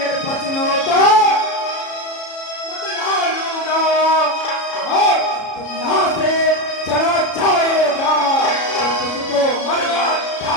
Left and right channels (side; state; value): right; late; 33 ms